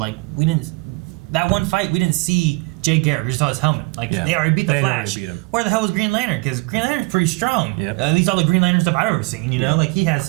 we didn't... That one fight, we didn't see Jay Garrick. We just saw his helmet. Like, they already beat the Flash. Beat him. Where the hell was Green Lantern? Because Green Lantern's pretty strong. Yep. At least all the Green Lantern stuff I've ever seen, you know? Like, he has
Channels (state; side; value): quieter; left; 26.3 dB